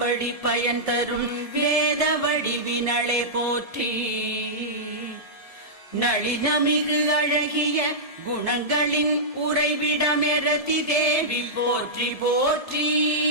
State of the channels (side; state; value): left; late; 1.7 ms